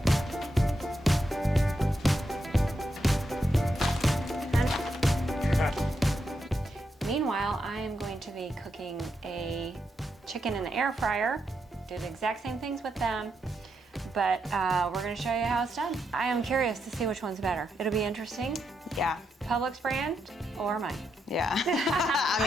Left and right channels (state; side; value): normal; both; correlation 0.83